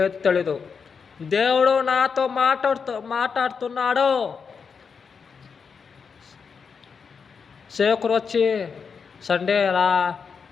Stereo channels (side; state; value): right; quieter; 5.8 dB